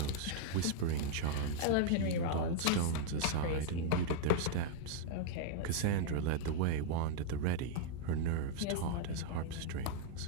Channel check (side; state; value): both; different; correlation -0.01